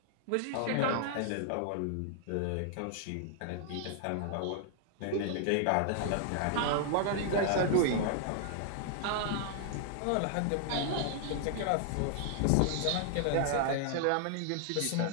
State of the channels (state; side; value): different; both; correlation -0.01